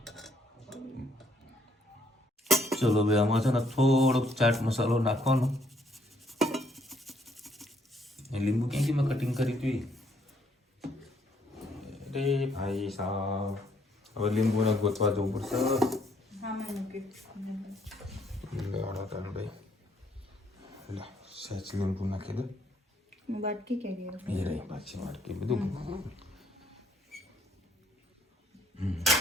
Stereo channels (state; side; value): normal; both; correlation 0.69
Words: ચલો ભાઈ આમાં છે ને થોડોક ચાટ મસાલો નાખવાનો. લીંબુ ક્યાંથી મેં કટિંગ કરી હતી અરે ભાઈ સાહેબ, હવે લીંબુને ગોતવા જવું પડશે. સહેજ લીંબુ નાખી દો. બાટકી કે એ રહી પાછી વાટકી બધું